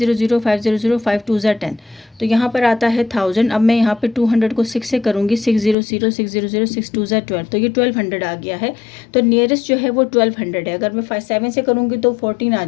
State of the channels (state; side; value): drops out; right; at 5.8 s